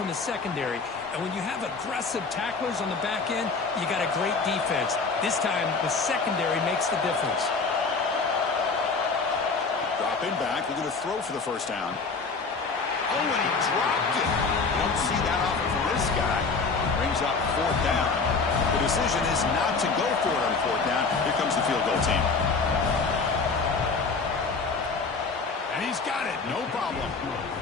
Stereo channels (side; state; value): right; quieter; 4.5 dB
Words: the secondary. And when you have aggressive tacklers on the back end, you got a great defense. This time, the secondary makes the difference. Dropping back, we're going to throw for the first down. Oh, and he dropped it. You don't see that often from this guy. Brings up 4th down. The decision is not to go for it on 4th down. Here comes the field goal team. And he's got it, no problem.